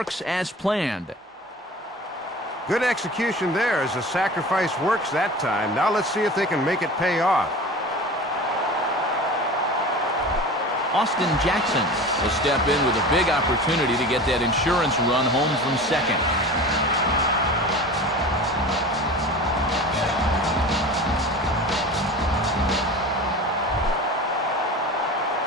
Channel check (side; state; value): both; normal; correlation 0.36